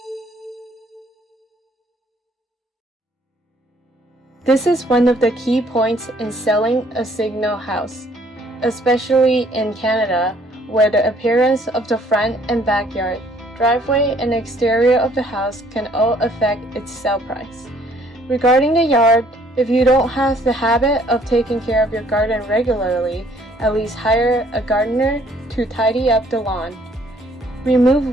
This is one of the key points in selling a signal house, especially in Canada, where the appearance of the front and backyard, driveway, and exterior of the house can all affect its sale price. Regarding the yard, if you don't have the habit of taking care of your garden regularly, at least hire a gardener to tidy up the lawn.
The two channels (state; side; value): normal; both; correlation 0.61